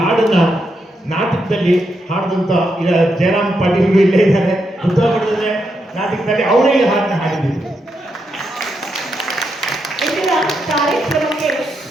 ನಾಟಕದಲ್ಲಿ ಹಾಡಿದಂತ ಜಯರಾಮ್ ಪಾಟೀಲ್ ಇಲ್ಲೇ ಇದ್ದಾರೆ. ಉತ್ತರಕನ್ನಡದ ನಾಟಕದಲ್ಲಿ ಅವರೇ ಈ ಹಾಡನ್ನ ಹಾಡಿದ್ರು. ಇಂದಿನ ಕಾರ್ಯಕ್ರಮಕ್ಕೆ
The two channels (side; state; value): both; normal; correlation 0.82